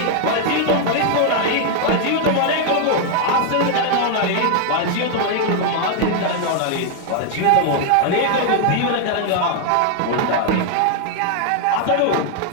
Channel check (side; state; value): both; different; correlation 0.00